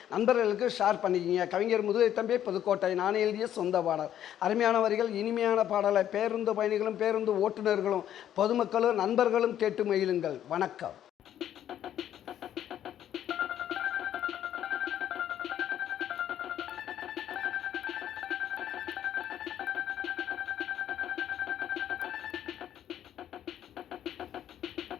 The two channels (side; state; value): right; quieter; 10.9 dB